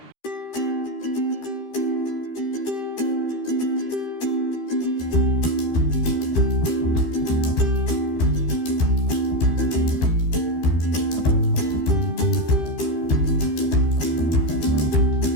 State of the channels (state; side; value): late; right; 13 ms